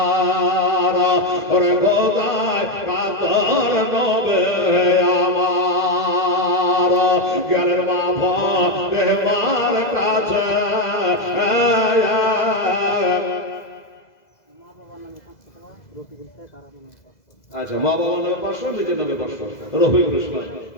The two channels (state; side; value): late; right; 2.0 ms